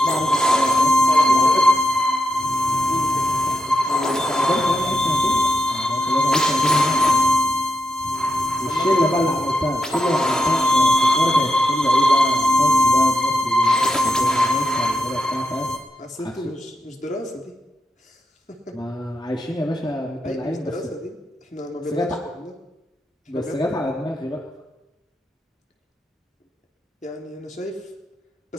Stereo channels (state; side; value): normal; both; correlation 0.86